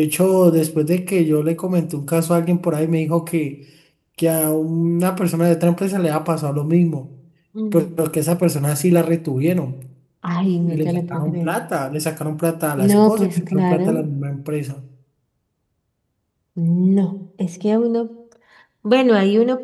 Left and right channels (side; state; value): both; identical; correlation 1.00